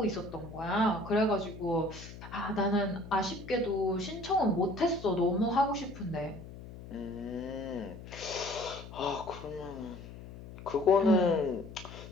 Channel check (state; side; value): noise; left; hum, 14 dB below the sound